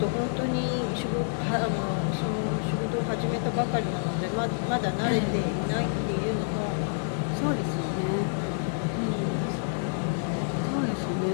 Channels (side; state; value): right; silent; 59 dB below the other